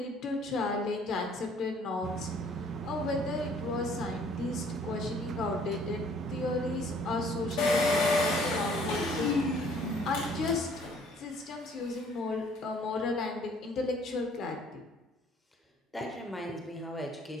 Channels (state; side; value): normal; both; correlation 0.58